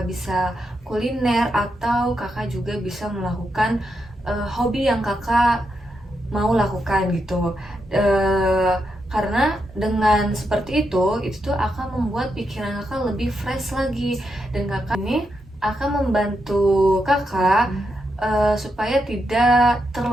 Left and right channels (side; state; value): both; normal; correlation 0.83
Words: bisa kuliner, atau kakak juga bisa melakukan hobi yang kakak mau lakukan gitu. Karena dengan seperti itu tuh akan membuat pikiran kakak lebih fresh lagi, dan kakak ini akan membantu kakak supaya tidak